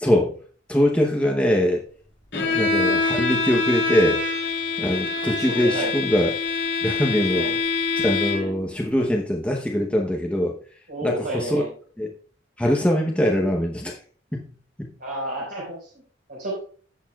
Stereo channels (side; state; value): both; normal; correlation 0.66